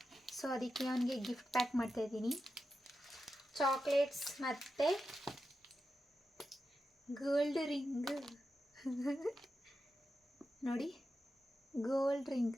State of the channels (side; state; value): both; normal; correlation 0.90